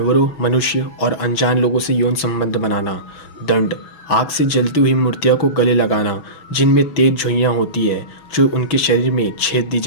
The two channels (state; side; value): late; right; 6.0 ms